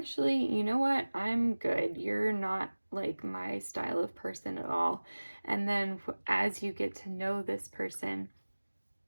you know what? I'm good. You're not like my style of person at all. And then as you get to know this person,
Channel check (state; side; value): inverted; both; correlation -1.00